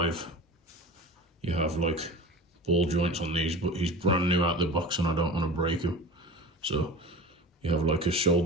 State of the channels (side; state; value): both; normal; correlation 0.35